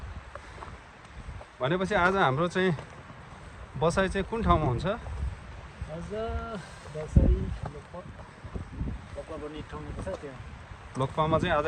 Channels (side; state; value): both; identical; correlation 1.00